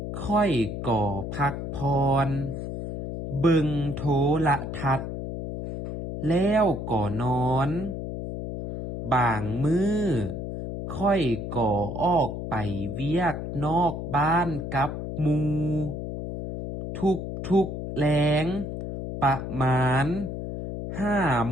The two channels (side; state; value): left; noise; hum, 6 dB below the sound